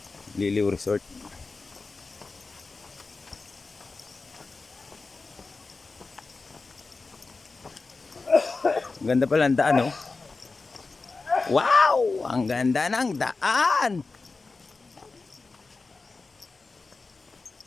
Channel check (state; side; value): quieter; right; 3.9 dB